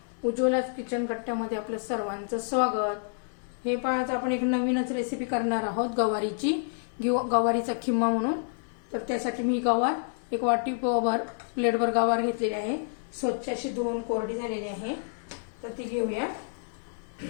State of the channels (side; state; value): right; silent; 59 dB below the other